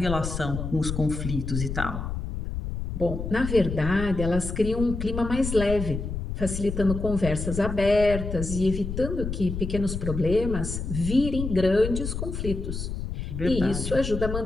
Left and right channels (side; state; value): left; noise; rumble, 5 dB below the sound